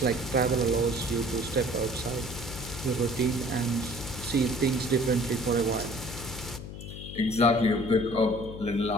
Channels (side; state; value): left; noise; hum, 10 dB below the sound